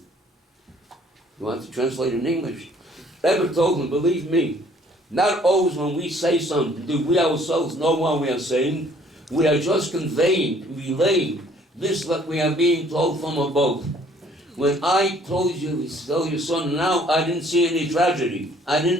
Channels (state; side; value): normal; both; correlation 0.59